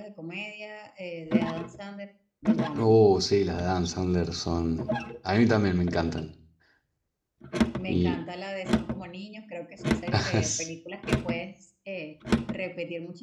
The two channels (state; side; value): identical; both; correlation 1.00